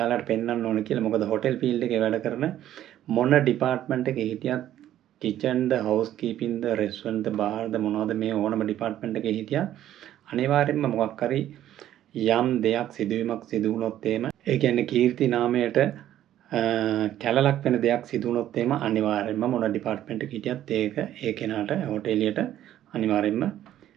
පෙන්වන්න ඕන කියලා. මොකද හොටෙල් ෆීල්ඩ් එකේ වැඩ කරන මොන ඩිපාර්ට්මන්ට් එකේ හිටියත් kitchen ද house keeping ද restaurant ද bar ද මොනවද මේ ඕනම ඩිපාර්ට්මන්ට් එකේ හිටියත් අනිවාර්යෙන්ම මොකක් හරි යම් දෙයක් සිදුවීමක් සිදු වුණොත් එහෙම ඒ කියන්නේ කීර්ති නාමයට කැලලක් වෙන දෙයක් සිදු වුණොත් එහෙම අනිවාර්යෙන්ම මොන ඩිපාර්ට්මන්ට් එකක හිටියත් ඒක ඒ කෙනාට හොටෙලියට අනිවාර්යෙන්ම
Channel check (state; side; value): quieter; left; 12.2 dB